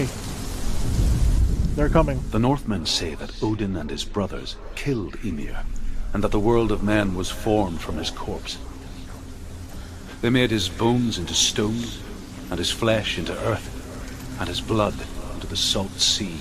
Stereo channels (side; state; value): both; identical; correlation 1.00